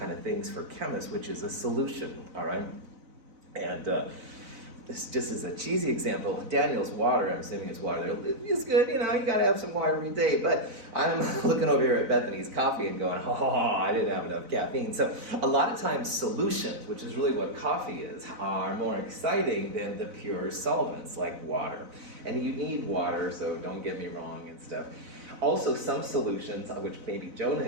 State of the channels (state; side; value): late; left; 4.0 ms